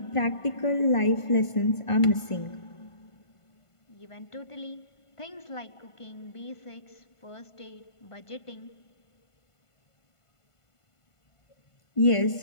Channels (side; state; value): right; late; 1.5 ms